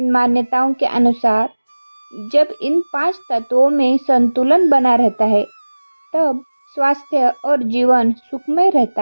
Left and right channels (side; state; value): both; inverted; correlation -1.00